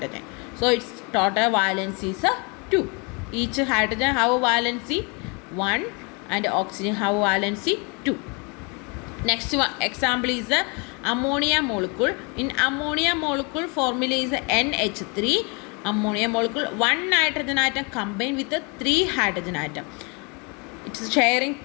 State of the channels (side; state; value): right; quieter; 31.7 dB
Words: So its total valency is 2. Each hydrogen have a valency 1 and oxygen have a valency 2. Next one example is ammonia molecule. In ammonia molecule formula is NH3. Ammonia molecule, one nitrogen atom combined with 3 hydrogen atom. It is sharing